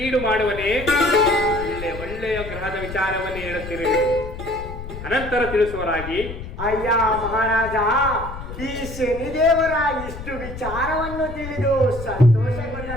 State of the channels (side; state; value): left; noise; rumble, 10 dB below the sound